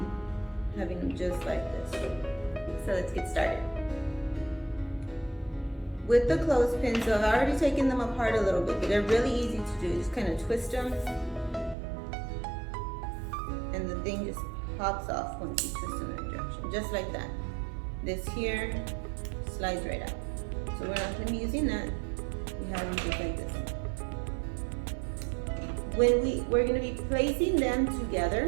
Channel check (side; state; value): left; drops out; at 11.8 s